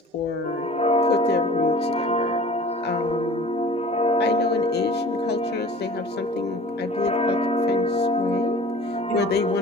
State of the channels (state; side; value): normal; both; correlation 0.44